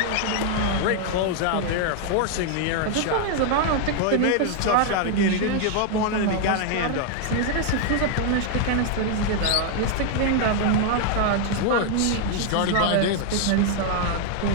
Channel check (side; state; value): both; different; correlation 0.00